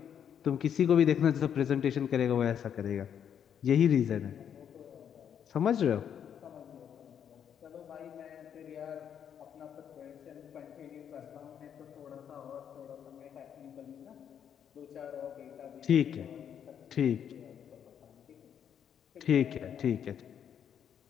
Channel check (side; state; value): right; quieter; 8.6 dB